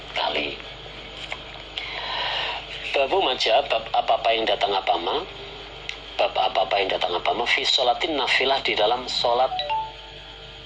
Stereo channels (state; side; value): identical; both; correlation 1.00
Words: kali. Babu maja, bab apa-apa yang datang apama, fi sholatin nafilah, di dalam sholat